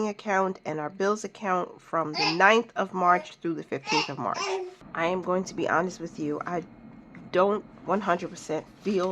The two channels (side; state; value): both; identical; correlation 1.00